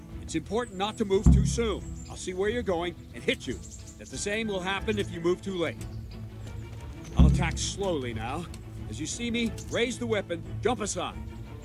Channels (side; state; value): both; identical; correlation 1.00